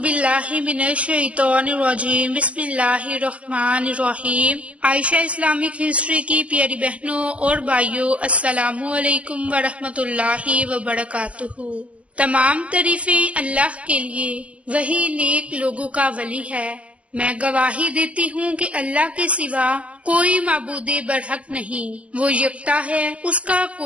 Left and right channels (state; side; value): late; left; 0.063 ms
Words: من الشیطان الرجیم، بسم اللہ الرحمن الرحیم۔ عائشہ اسلامک ہسٹری کی پیاری بہنوں اور بھائیوں، السلام علیکم ورحمۃ اللہ وبرکاتہ۔ تمام تعریفیں اللہ کے لیے، وہی نیک لوگوں کا ولی ہے۔ میں گواہی دیتی ہوں کہ اللہ کے سوا کوئی معبود برحق نہیں، وہ یکتا ہے، اس کا